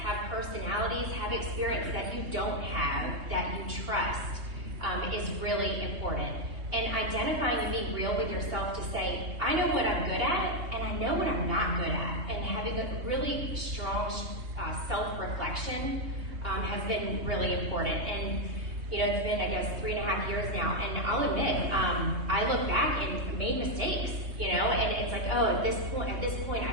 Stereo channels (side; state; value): left; late; 3.2 ms